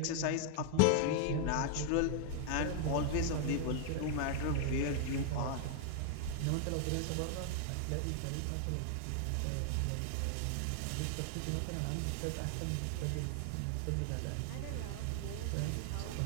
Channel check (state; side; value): different; both; correlation 0.00